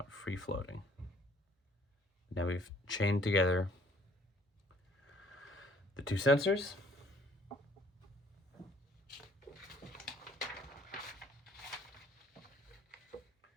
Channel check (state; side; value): normal; both; correlation 0.58